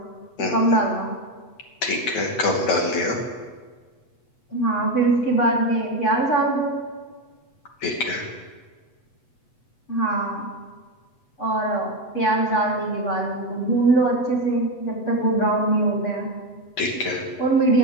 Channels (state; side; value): late; right; 8.1 ms